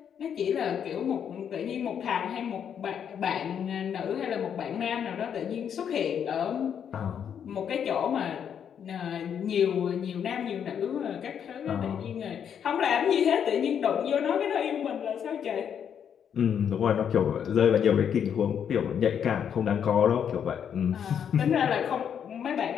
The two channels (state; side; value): quieter; right; 8.2 dB